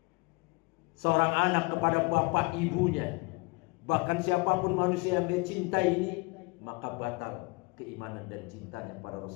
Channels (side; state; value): right; quieter; 27.2 dB